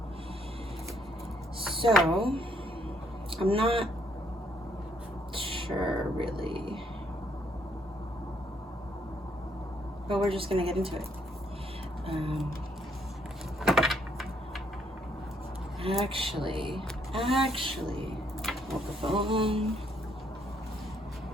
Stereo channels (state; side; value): normal; both; correlation 0.71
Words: So, I'm not sure really, but we're just gonna get into it. Actually, hold the phone.